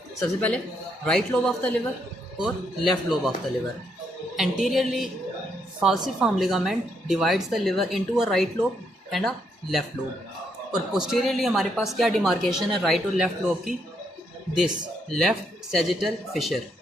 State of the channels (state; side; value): normal; both; correlation 0.76